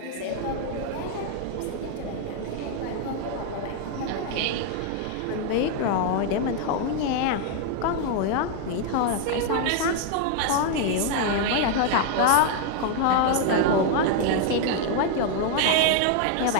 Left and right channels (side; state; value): both; different; correlation 0.00